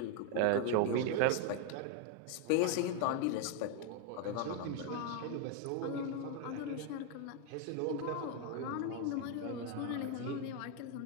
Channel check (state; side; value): different; both; correlation 0.01